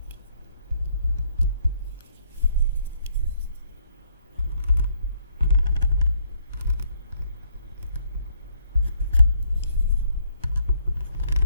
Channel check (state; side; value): inverted; both; correlation -0.69